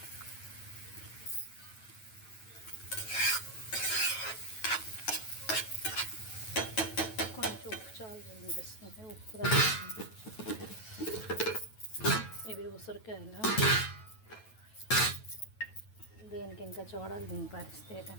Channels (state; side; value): late; right; 9.2 ms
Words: కొంచెం ఉప్పు చాలు అనిపిస్తుంది, ఉప్పు. ఇవి ఉసిరికాయలు. దీనికి ఇంకా చూడాలి దీని పరిస్థితి